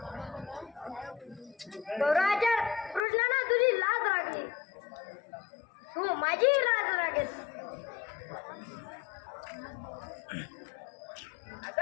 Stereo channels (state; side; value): drops out; right; at 3.0 s